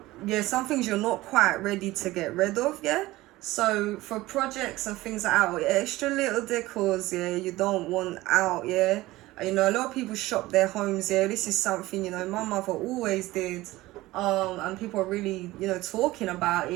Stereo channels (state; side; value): quieter; left; 18.2 dB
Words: some things you're not quite ready to get rid of, yeah. So for projects and things like that, extra little decors, yeah, you don't want out, yeah. You know, a lot of people shop their homes, yeah. This is something, you know, my mother always did. And people are really, you know, talking about